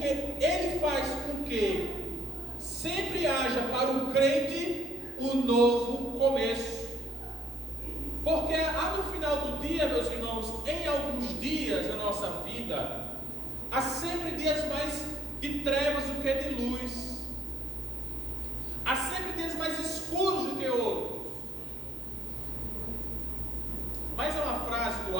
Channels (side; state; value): both; normal; correlation 0.67